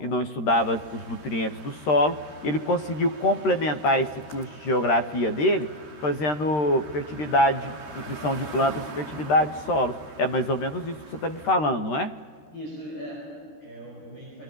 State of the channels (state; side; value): late; right; 13 ms